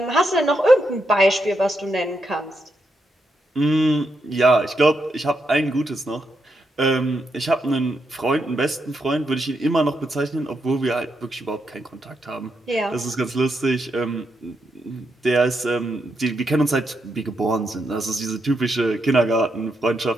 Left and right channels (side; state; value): both; normal; correlation 0.82